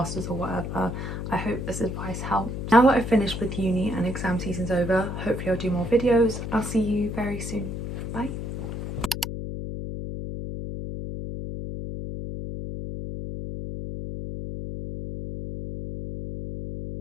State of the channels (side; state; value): left; noise; hum, 5 dB below the sound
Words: or whatever, I hope this advice helped. Now that I've finished with uni and exam season's over, hopefully I'll do more videos. I'll see you very soon. Bye.